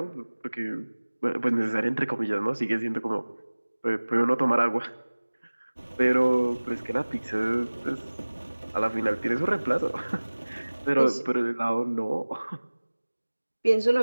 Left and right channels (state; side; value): inverted; both; correlation -1.00